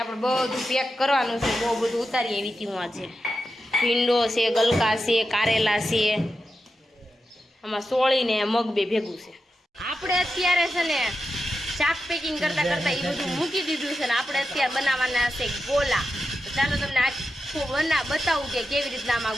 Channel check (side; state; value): both; normal; correlation 0.90